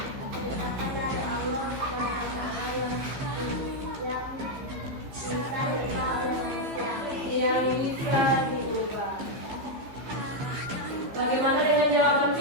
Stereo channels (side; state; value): left; late; 15 ms